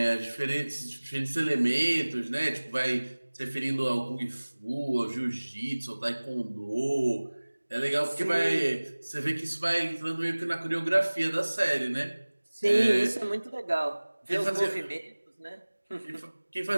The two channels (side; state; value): both; inverted; correlation -1.00